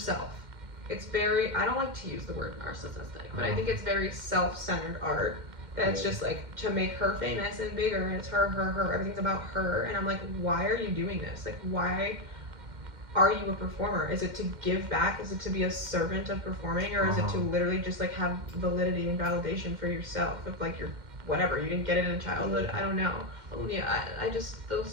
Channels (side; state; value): left; late; 2.1 ms